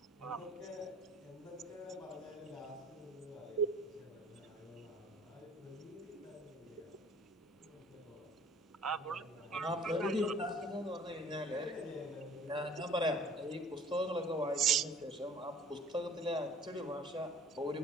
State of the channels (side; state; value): both; normal; correlation 0.51